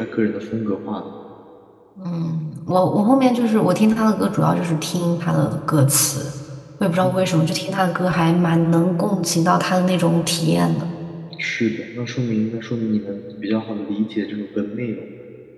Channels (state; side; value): identical; both; correlation 1.00